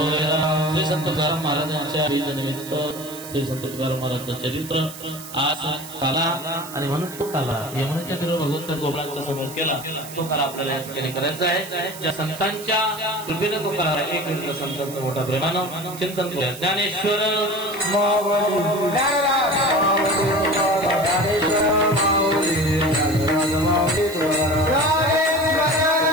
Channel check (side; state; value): right; noise; hiss, 14 dB below the sound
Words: श्री संत तुकाराम महाराजांच्या निमित्त श्री संत तुकाराम महाराजांचं चरित्र आज काला आणि म्हणून तो काला यमुनेच्या तीरावर भगवंत गोपाळांच्या समोर केला. तो काला आपल्याला या ठिकाणी करायचा आहे. ज्या संतांच्या कृपेने तो करा एक मिनिट संतांचं मोठ्या प्रेमानं चिंतन करूया. ज्ञानेश्वर